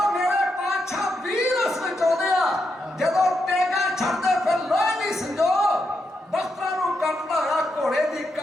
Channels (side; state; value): both; normal; correlation 0.83